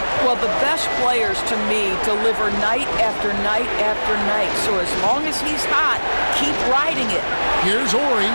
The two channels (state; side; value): inverted; both; correlation -1.00